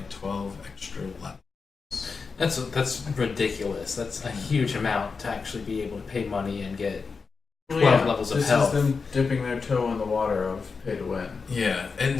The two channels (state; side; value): quieter; right; 4.9 dB